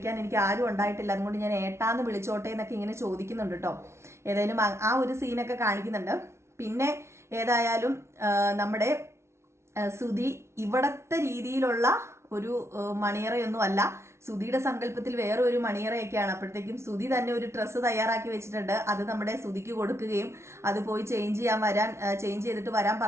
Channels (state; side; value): late; left; 0.13 ms